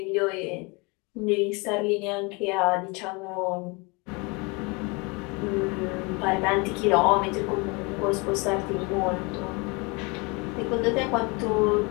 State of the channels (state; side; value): quieter; right; 28.5 dB